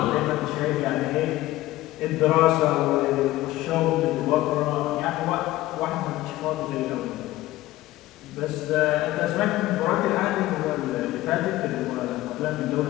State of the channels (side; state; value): right; quieter; 16.6 dB